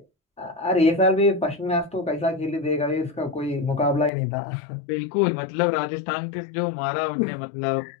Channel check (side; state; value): right; drops out; at 4.1 s